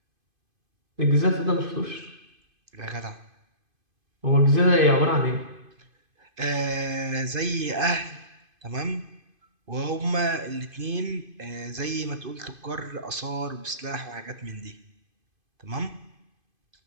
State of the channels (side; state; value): left; late; 2.5 ms